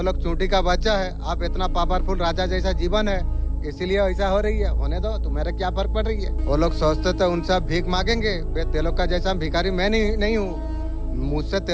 लोग चूंटी का बच्चा है, आप इतना पावरफुल राजा जैसा जीवन है, इसीलिए ऐसा हो रही है। होने दो, तुम्हारे क्या फर्क पड़ रही है? वो लोग सोचते थे उनसे भीख मांगेंगे, तेलों का जैसा भिखारी मैं नहीं हूँ। मुझसे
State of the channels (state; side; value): identical; both; correlation 1.00